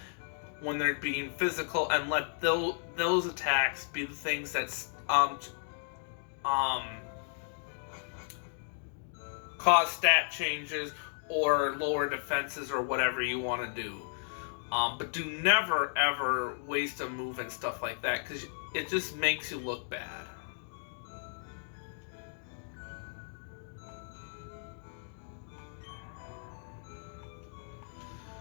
when they're being physical, and let those attacks be the things that cause stat changes or lower defenses or whatever you want to do. But do never ever waste a move and stuff like that, because it just makes you look bad.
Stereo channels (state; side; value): silent; right; digital silence